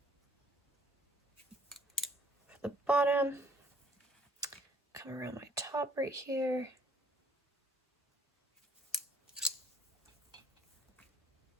for the bottom. Come around my top right here.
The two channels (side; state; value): both; normal; correlation 0.60